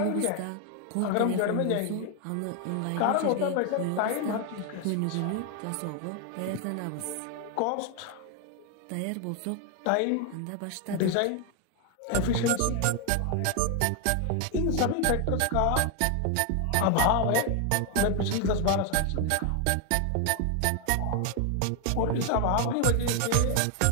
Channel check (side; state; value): both; different; correlation 0.01